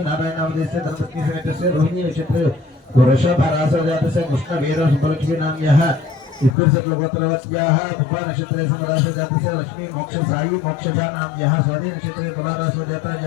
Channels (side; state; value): right; drops out; at 6.6 s